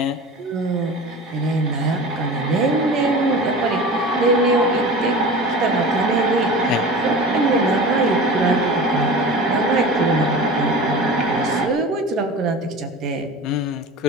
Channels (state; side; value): normal; both; correlation 0.34